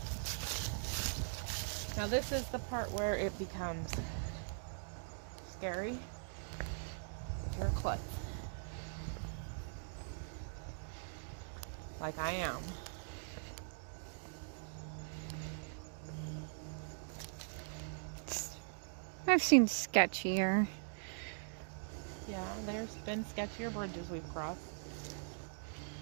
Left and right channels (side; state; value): left; silent; digital silence